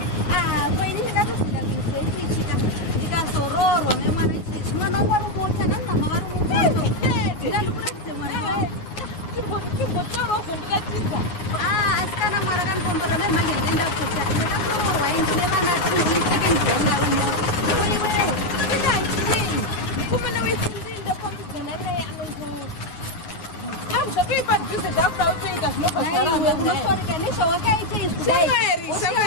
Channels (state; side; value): late; right; 9.3 ms